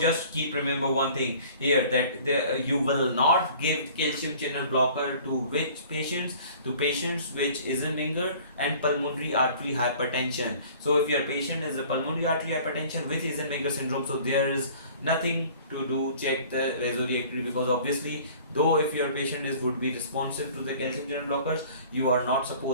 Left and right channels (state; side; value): inverted; both; correlation -0.49